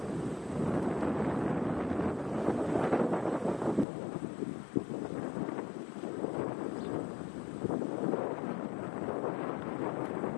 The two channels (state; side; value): drops out; right; at 3.9 s